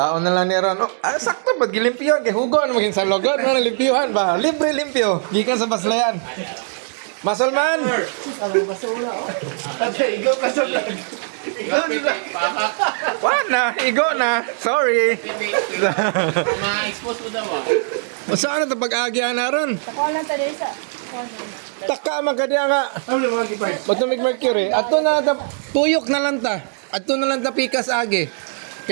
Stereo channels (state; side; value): silent; left; 61 dB below the other